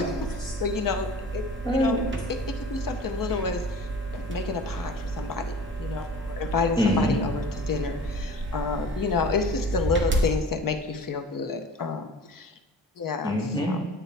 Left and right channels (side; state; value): both; normal; correlation 0.42